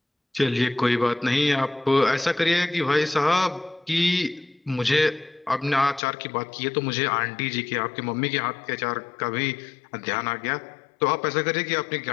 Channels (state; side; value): drops out; right; at 6.0 s